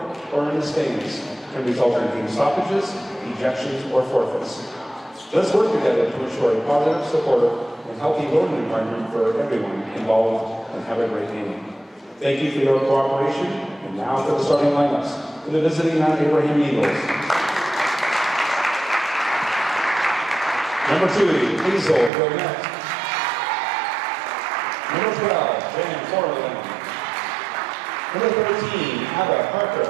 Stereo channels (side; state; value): left; drops out; at 22.1 s